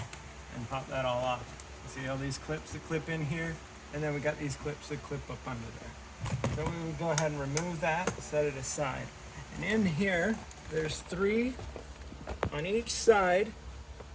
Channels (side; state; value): both; identical; correlation 1.00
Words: and pop that all off. See all these clips that clip in here, and then we got these clips that clip up under there. So we would go ahead and remove that, set it aside. And in here, there's 3 on each side,